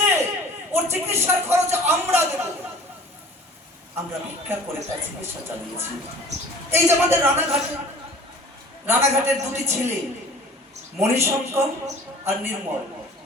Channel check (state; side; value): normal; both; correlation 0.46